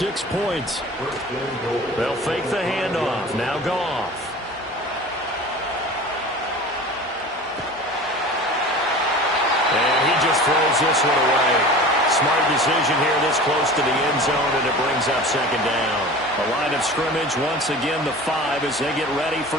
points. They'll fake the handoff. Now Goff. And he just throws this one away. Smart decision here this close to the end zone, and it brings up 2nd down. A line of scrimmage, once again the 5 as they get ready for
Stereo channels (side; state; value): both; normal; correlation 0.38